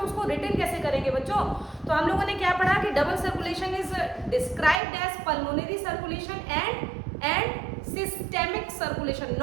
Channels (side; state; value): left; drops out; at 4.8 s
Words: रिटन कैसे करेंगे बच्चों। तो हम लोगों ने क्या पढ़ा कि double circulation is described as pulmonary circulation and systemic circulation,